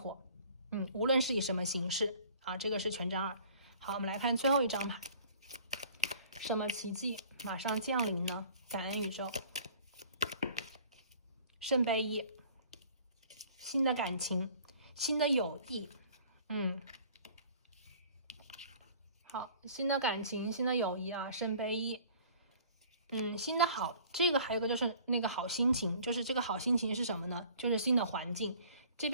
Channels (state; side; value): inverted; both; correlation -0.51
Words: 无论是以什么形式这个是权杖2。好，我们来看最后一张牌，什么奇迹马上降临呢？感恩宇宙。圣杯一，新的感情，新的友谊，好，新的感情，新的友谊啊，圣杯一，新的好，这个还有一个就是那个好心情，就是这个好心情是什么呢？就是新的环境。这